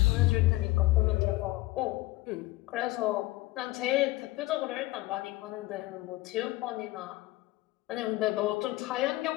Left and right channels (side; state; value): right; quieter; 19.2 dB